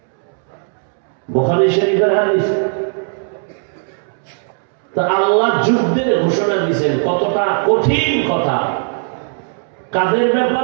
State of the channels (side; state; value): left; silent; 68 dB below the other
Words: বুখারী শরীফের হাদিস। তা আল্লাহ যুদ্ধের ঘোষণা দিয়েছেন, কতটা কঠিন কথা। কাদের